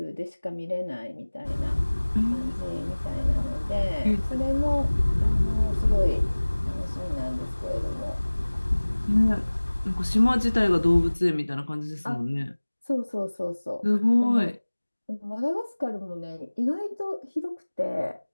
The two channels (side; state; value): both; inverted; correlation -1.00